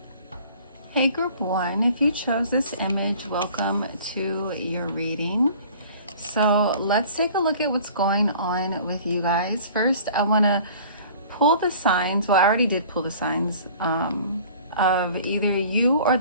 Hey group 1, if you chose this image, welcome to your reading. So let's take a look at what's going on with you guys. First, I want to pull the signs. Well, I already did pull the signs of either you or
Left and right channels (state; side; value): inverted; both; correlation -0.48